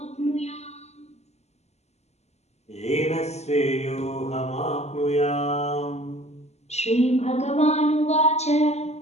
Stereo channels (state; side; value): late; right; 0.32 ms